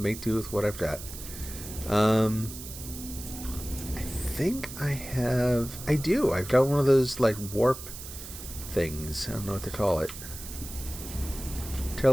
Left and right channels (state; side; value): noise; right; hiss, 11 dB below the sound